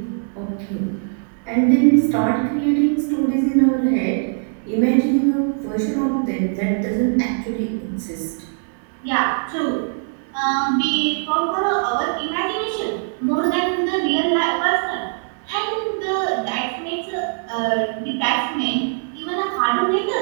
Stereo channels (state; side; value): silent; left; digital silence